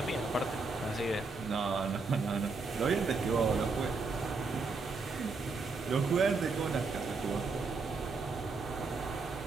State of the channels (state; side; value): quieter; left; 4.0 dB